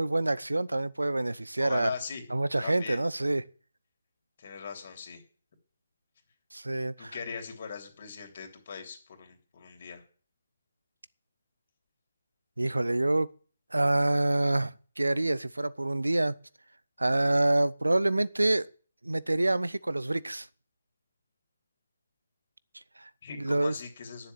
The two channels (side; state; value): both; inverted; correlation -0.98